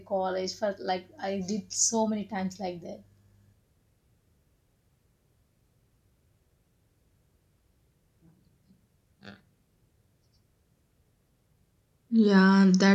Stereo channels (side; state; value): both; identical; correlation 1.00